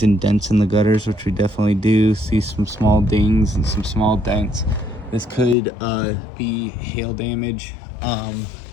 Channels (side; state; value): right; drops out; at 5.6 s